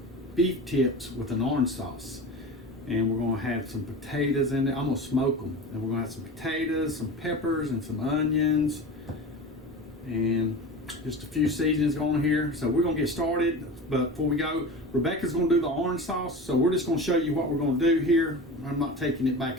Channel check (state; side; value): normal; both; correlation 0.31